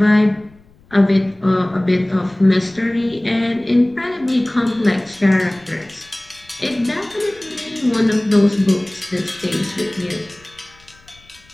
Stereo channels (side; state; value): left; noise; rumble, 29 dB below the sound